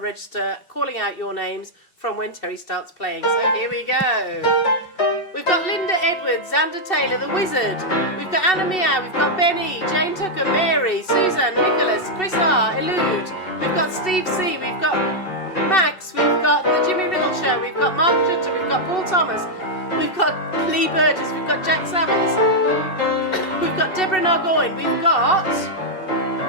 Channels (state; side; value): late; right; 2.7 ms